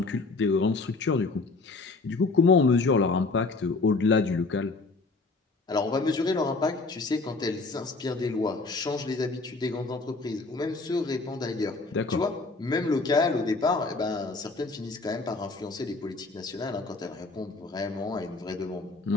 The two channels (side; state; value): right; quieter; 3.7 dB